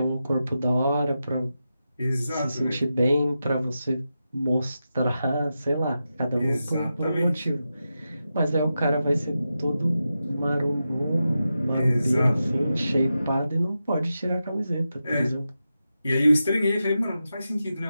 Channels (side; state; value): both; inverted; correlation -0.90